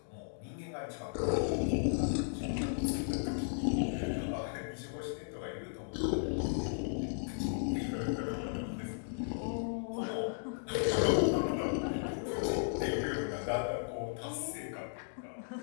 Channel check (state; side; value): silent; right; digital silence